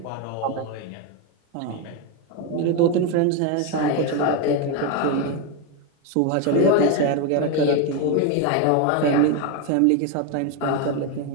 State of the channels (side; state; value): both; different; correlation 0.02